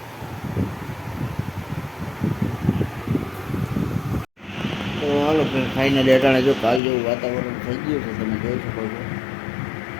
तो हालो फ्रेंड, फाइनली अटाणे जो काल जो वातावरण थई गयुं छे तमे जोई शको छो।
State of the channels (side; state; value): right; drops out; at 6.8 s